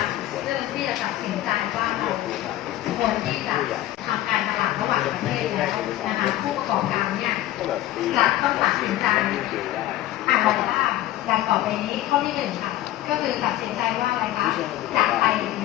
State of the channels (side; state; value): right; quieter; 14.6 dB